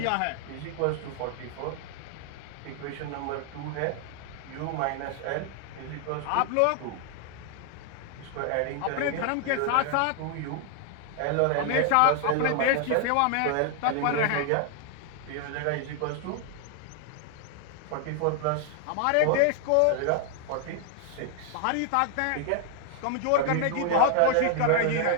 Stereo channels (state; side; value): different; both; correlation 0.00